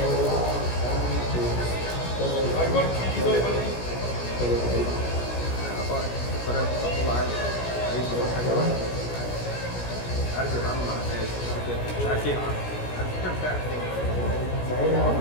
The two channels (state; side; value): late; right; 17 ms